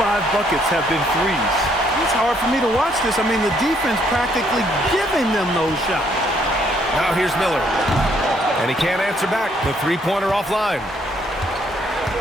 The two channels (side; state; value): both; normal; correlation 0.68